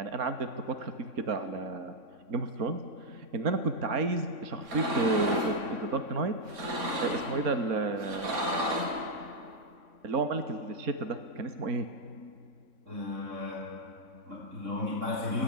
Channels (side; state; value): left; late; 3.6 ms